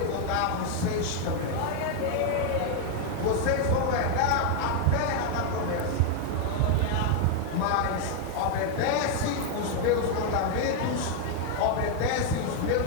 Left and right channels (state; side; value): different; both; correlation 0.00